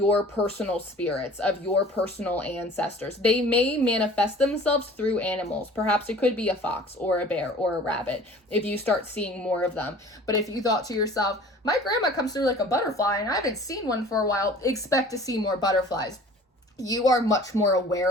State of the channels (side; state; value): both; normal; correlation 0.47